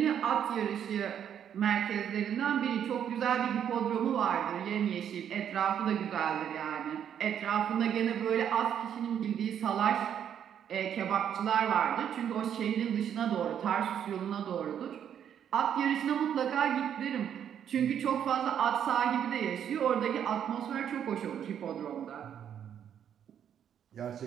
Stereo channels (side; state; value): left; quieter; 9.1 dB